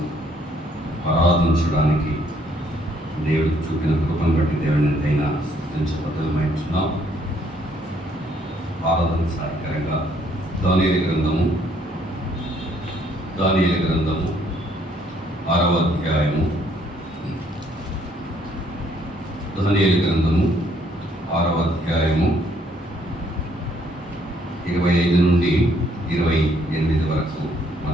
ఆరాధించడానికి దేవుడికి చూపిన కృపను బట్టి దేవుని ఎంతైనా స్తుతించబద్ధమైంటున్నాం. ఆరాధన సహాయకరంగా దానియేలు గ్రంథము 6వ అధ్యాయము దానియేలు గ్రంథము 6వ అధ్యాయము 25 నుండి 28 వరకు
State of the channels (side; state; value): both; normal; correlation 0.67